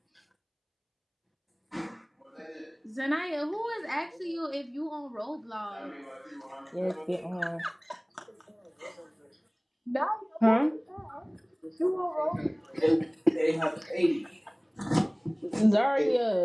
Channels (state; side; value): identical; both; correlation 1.00